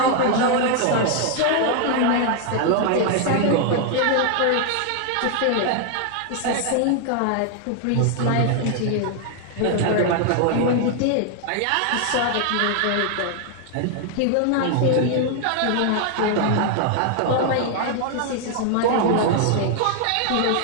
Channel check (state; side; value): different; both; correlation 0.00